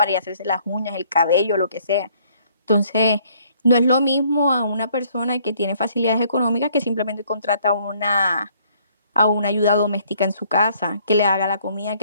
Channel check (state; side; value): inverted; both; correlation -0.62